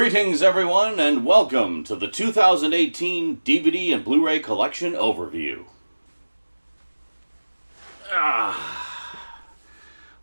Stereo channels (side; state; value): both; inverted; correlation -1.00